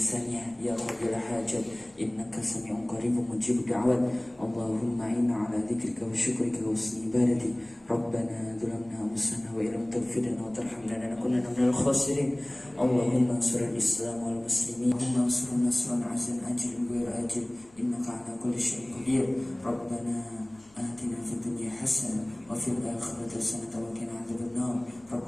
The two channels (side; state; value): left; noise; hum, 29 dB below the sound